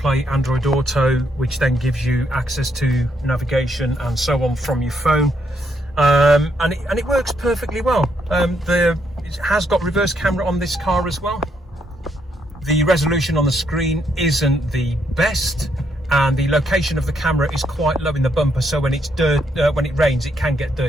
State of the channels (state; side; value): normal; both; correlation 0.75